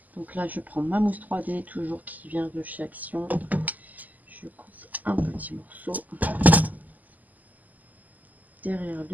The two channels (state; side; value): late; left; 0.081 ms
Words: Donc là, je prends ma mousse 3D, toujours qui vient de chez Action. Je coupe un petit morceau derrière